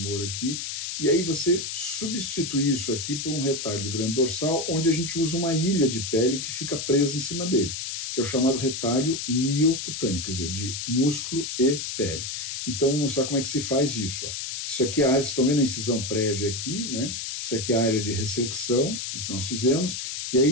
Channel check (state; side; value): noise; left; hiss, 5 dB below the sound